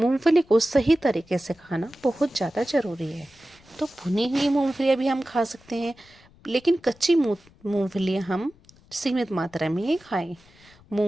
को सही तरीके से खाना बहुत ज़्यादा ज़रूरी है। तो भुनी हुई मूंगफलियाँ भी हम खा सकते हैं, लेकिन कच्ची मूंगफलियाँ हम सीमित मात्रा में ही खाएं।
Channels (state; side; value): noise; left; rumble, 28 dB below the sound